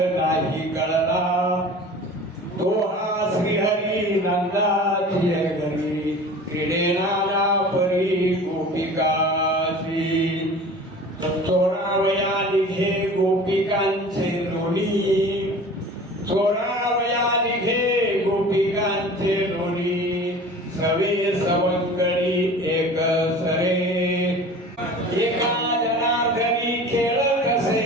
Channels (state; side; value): normal; both; correlation 0.41